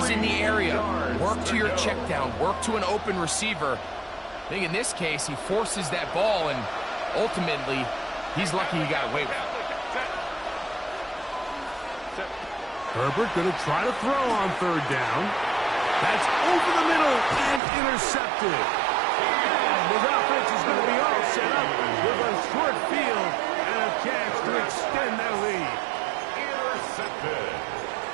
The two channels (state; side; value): drops out; left; at 17.6 s